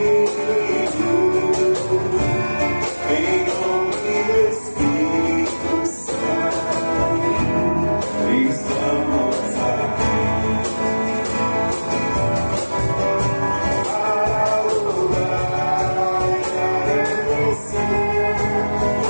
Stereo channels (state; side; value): inverted; both; correlation -1.00